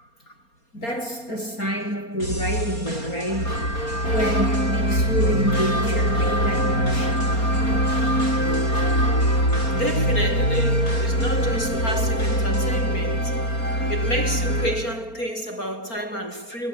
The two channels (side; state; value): right; late; 4.3 ms